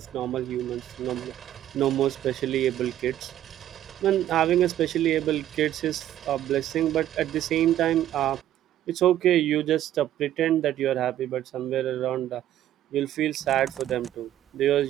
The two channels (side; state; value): left; quieter; 12.3 dB